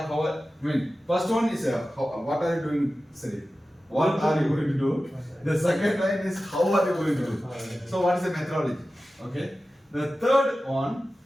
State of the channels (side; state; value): both; normal; correlation 0.94